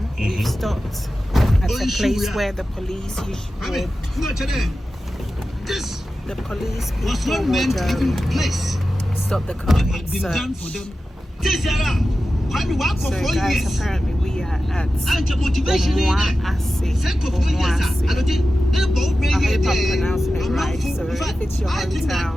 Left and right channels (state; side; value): normal; both; correlation 0.93